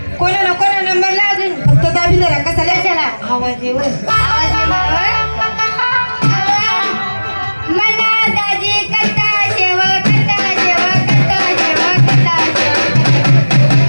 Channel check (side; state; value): both; inverted; correlation -1.00